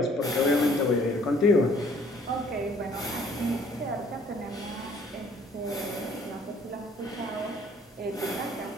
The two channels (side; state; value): both; normal; correlation 0.59